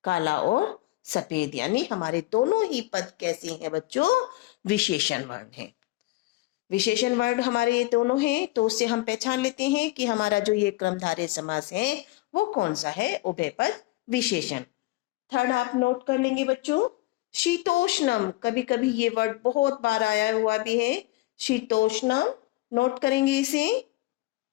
काला और सफेद, यानी हमारे दोनों ही पद कैसे हैं बच्चों? विशेषण वर्ण हैं। विशेषण वर्ण हमारे ये दोनों हैं, तो उससे हम पहचान लेते हैं कि हमारा जो ये क्रमधारय समास है वो कौन सा है? उभय पद विशेषण। थर्ड आप नोट कर लेंगे बच्चों, शीतोष्णम। कभी कभी ये वर्ड बहुत बार आया हुआ भी है, शीतोष्णम। नोट करेंगे इसे।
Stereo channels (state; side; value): quieter; right; 20.0 dB